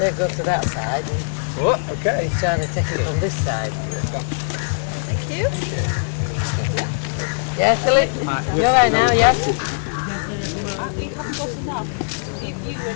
go to that side. Oh, okay. He's trying to take it from this side. Thank you. Yeah, Philip? You're right now, yeah? We haven't got enough. You were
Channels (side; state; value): right; silent; digital silence